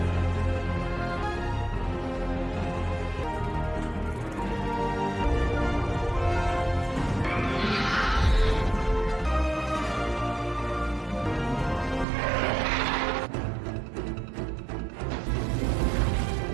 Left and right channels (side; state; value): left; drops out; at 12.1 s